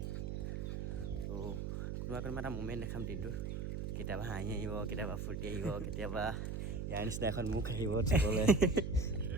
তো কোনোবা এটা মুমেণ্ট দেখাম দিনটোৰ কেতিয়াবা হাঁহি আহিব কেতিয়াবা ফূৰ্তি আহিব কেতিয়াবা ইয়াৰ নিচিনা এখন মুখ আহিব চাবলৈ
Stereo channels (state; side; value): noise; right; hum, 3 dB below the sound